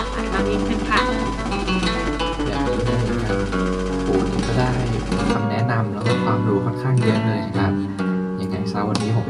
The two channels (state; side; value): identical; both; correlation 1.00